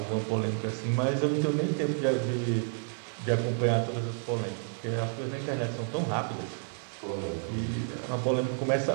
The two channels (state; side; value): silent; left; 58 dB below the other